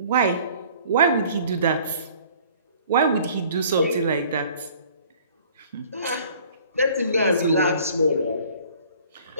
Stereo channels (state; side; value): inverted; both; correlation -0.53